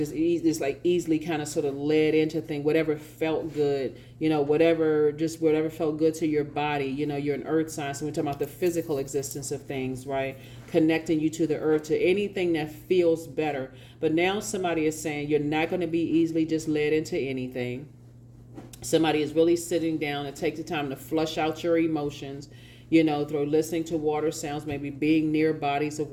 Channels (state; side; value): identical; both; correlation 1.00